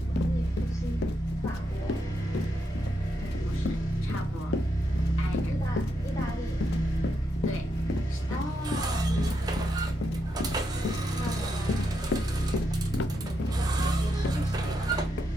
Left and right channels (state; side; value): normal; both; correlation 0.81